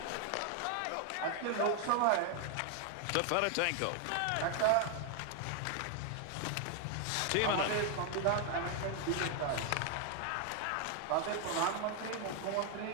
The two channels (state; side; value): different; both; correlation 0.00